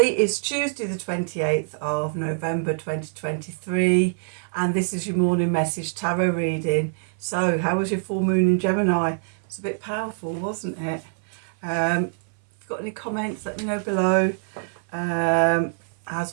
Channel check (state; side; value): silent; left; 59 dB below the other